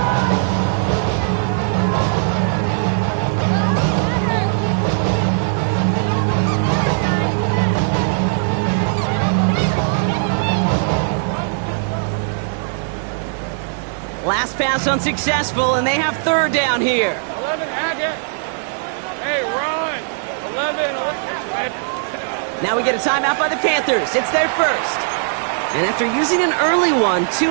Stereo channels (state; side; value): silent; left; digital silence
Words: Last pass unsuccessful, and they have 3rd down here. 11, Hackett. Hey, run. 11. Now we get a timeout by the Panthers. It's their first. And after using an early one, 2